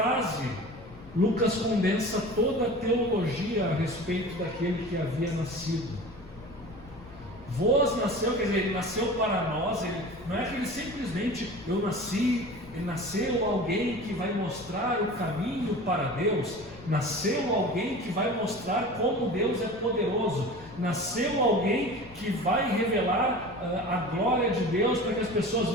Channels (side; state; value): left; noise; rumble, 21 dB below the sound